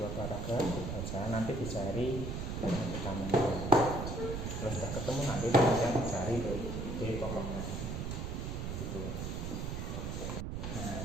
paragraf dibaca, nanti dicari yang utamanya. Kalau sudah ketemu nanti kemudian dicari ide pokoknya. Begitu.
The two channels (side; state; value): right; noise; rumble, 4 dB below the sound